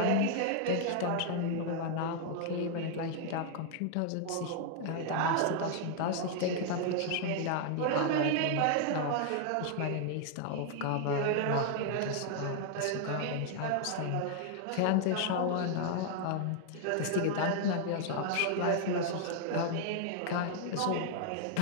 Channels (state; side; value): different; both; correlation 0.00